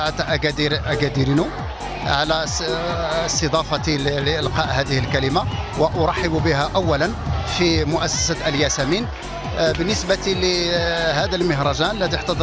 أكاديرينو على استضافتي لإلقاء هذه الكلمة، وأرحب بها أولا في مؤسسة الياسمين. بالنسبة لهذا المهرجان الذي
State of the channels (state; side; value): identical; both; correlation 1.00